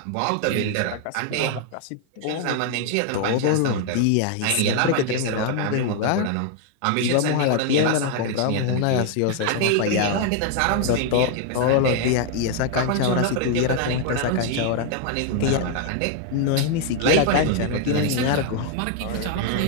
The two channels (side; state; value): both; different; correlation 0.00